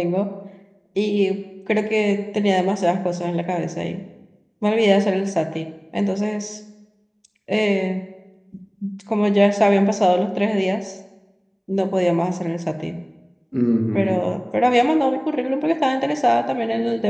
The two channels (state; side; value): identical; both; correlation 1.00